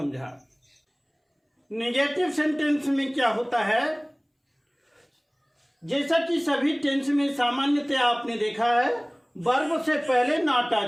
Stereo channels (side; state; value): both; identical; correlation 1.00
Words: नेगेटिव सेंटेंस में क्या होता है, जैसा कि सभी टेंस में सामान्यतः आपने देखा है, वर्ब से पहले नॉट आ